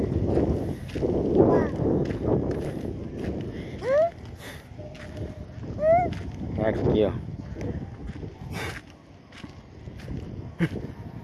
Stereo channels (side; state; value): both; identical; correlation 1.00